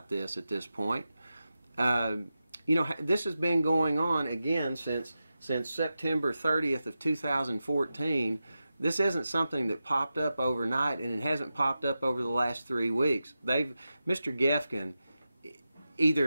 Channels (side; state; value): both; inverted; correlation -0.92